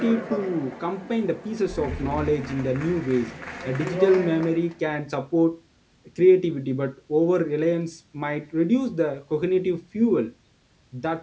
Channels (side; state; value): both; identical; correlation 1.00